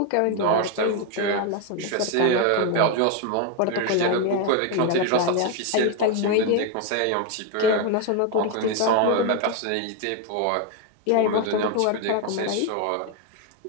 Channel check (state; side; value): different; both; correlation 0.01